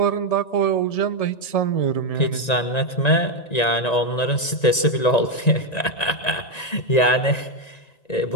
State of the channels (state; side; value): late; right; 1.9 ms